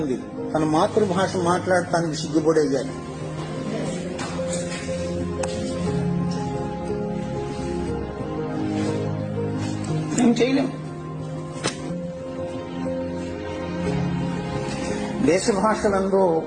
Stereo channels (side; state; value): both; identical; correlation 1.00